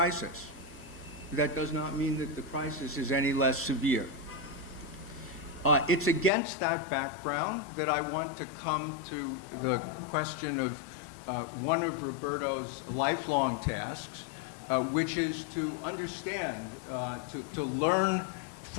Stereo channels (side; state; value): right; drops out; at 6.3 s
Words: That does not mean that the crisis is any less severe. It's against that background that I want to come to the question one of Roberto's lifelong tasks, which is to understand, to learn